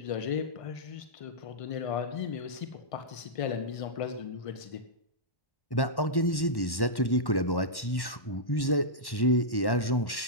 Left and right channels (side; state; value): right; late; 1.1 ms